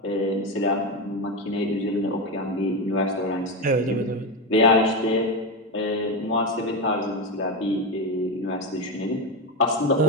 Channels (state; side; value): normal; both; correlation 0.13